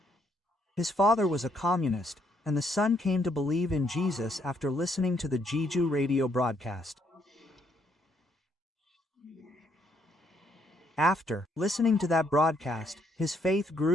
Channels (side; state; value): both; normal; correlation 0.72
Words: His father was a communist, and the son came to believe in Jesus after listening to the Jeju radio broadcast. After listening to that broadcast, his faith